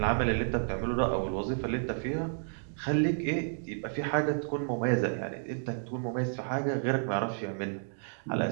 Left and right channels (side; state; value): left; silent; digital silence